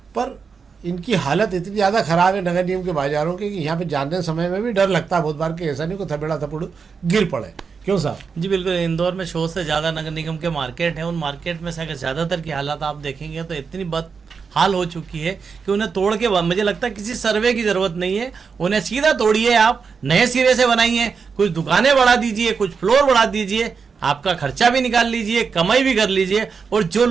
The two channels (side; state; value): left; quieter; 5.6 dB